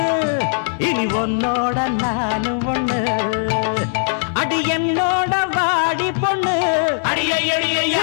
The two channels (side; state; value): right; silent; digital silence